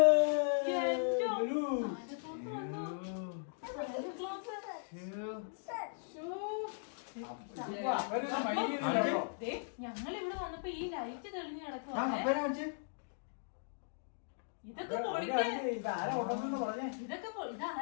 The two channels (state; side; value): silent; right; digital silence